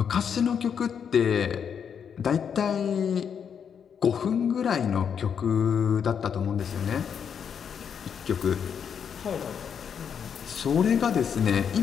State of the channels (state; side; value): quieter; right; 7.5 dB